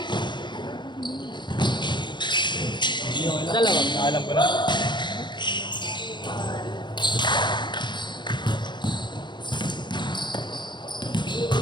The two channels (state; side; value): late; right; 0.22 ms